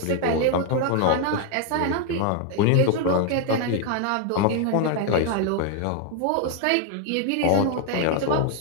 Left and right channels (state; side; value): different; both; correlation 0.01